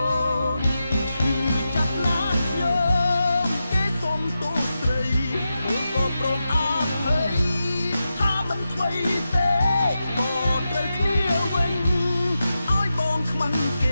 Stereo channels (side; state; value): both; inverted; correlation -0.90